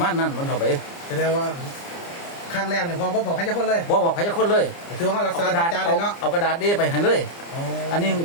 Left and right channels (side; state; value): right; late; 29 ms